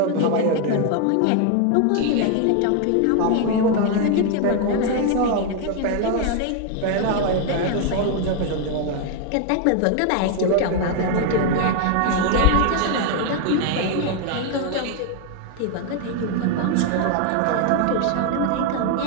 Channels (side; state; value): both; different; correlation 0.01